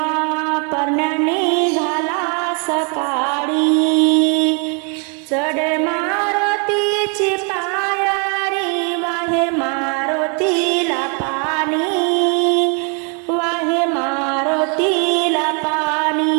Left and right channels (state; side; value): quieter; left; 37.0 dB